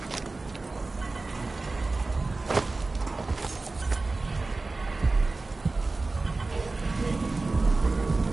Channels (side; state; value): left; quieter; 3.5 dB